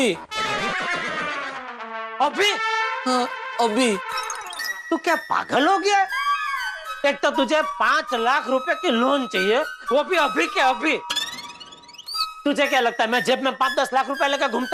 अभी? हाँ अभी। तू क्या पागल हो गया? एक तो तुझे 5 लाख रुपए की लोन चाहिए, वो भी अभी के अभी। तुझे क्या लगता है मैं जेब में 5-10 लाख रुपए लेकर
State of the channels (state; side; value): identical; both; correlation 1.00